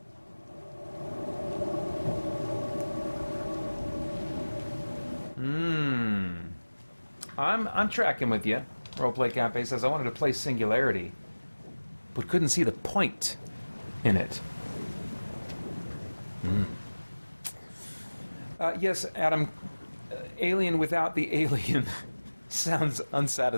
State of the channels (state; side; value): inverted; both; correlation -1.00